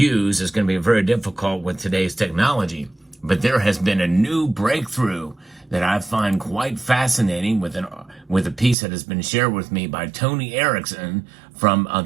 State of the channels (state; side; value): drops out; left; at 8.8 s